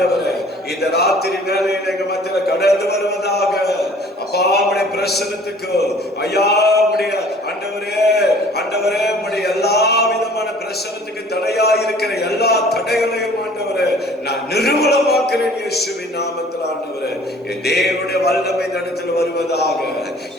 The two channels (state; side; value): normal; both; correlation 0.52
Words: இந்த ராத்திரி வேளையில எங்க மத்தியில கடந்து வருவதாக. அப்பா உம்முடைய பிரசன்னத்துக்கு ஐயா, உம்முடைய ஆண்டவரே உம்முடைய எல்லா விதமான பிரசன்னத்துக்கு தடையா இருக்கிற எல்லா தடைகளையும் ஆண்டவரே நான் நிர்மூலமாக்குறேன் இயேசுவின் நாமத்தில். ஆண்டவரே, என் தேவனுடைய வல்லமை இந்த இடத்துல வருவதாக,